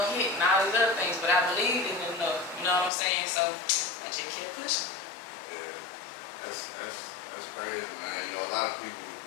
all these other things, but I believed in it enough. You know what I'm saying? So I just kept pushing. Yeah, that's crazy, man. You know, a lot of people.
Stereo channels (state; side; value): drops out; right; at 2.9 s